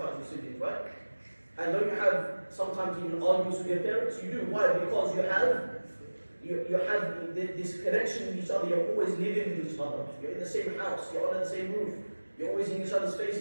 with siblings, right? And don't you have sometimes even arguments with your parents? You do. Why? Because you have this connection with each other. You're always living with each other. You're in the same house. You're under the same roof. You're always in each other's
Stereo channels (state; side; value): inverted; both; correlation -1.00